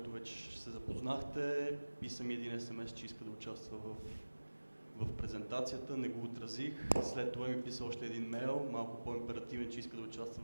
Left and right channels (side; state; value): both; inverted; correlation -1.00